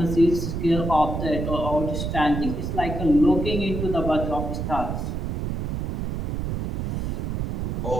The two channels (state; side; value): noise; right; rumble, 2 dB below the sound